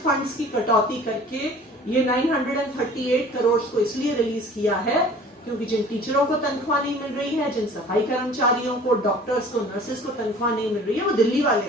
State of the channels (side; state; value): both; normal; correlation 0.47